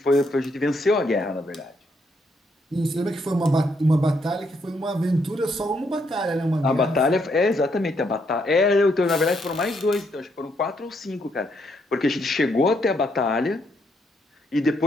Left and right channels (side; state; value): both; normal; correlation 0.75